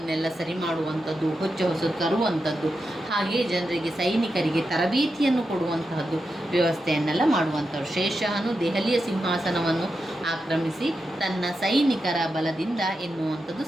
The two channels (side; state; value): both; normal; correlation 0.88